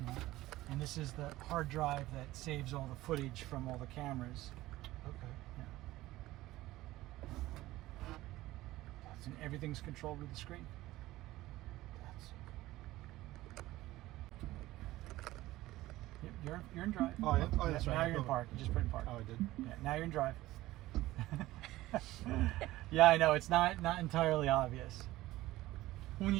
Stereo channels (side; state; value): left; quieter; 16.9 dB